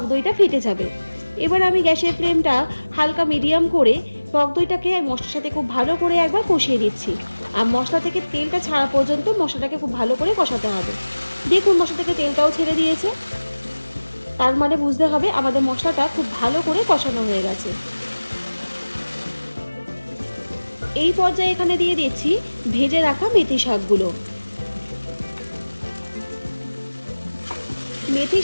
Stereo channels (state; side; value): inverted; both; correlation -1.00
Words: দইটা ফেটে যাবে। এবার আমি গ্যাসের ফ্লেমটা হালকা মিডিয়াম করে টক দইটাকে মশলার সাথে খুব ভালো করে একবার কষিয়ে দিচ্ছি। আর মশলা থেকে তেলটা ছাড়া পর্যন্ত মশলাটাকে খুব ভালো করে কষাতে হবে। দেখুন মশলা থেকে তেলটাও ছেড়ে দিয়েছে, তার মানে বুঝতে হবে আমাদের মশলাটা খুব ভালো করে কষানো হয়ে গেছে। এই পর্যায়ে এখানে দিয়ে দিচ্ছি ভেজে রাখা মেথি শাকগুলো। মেথি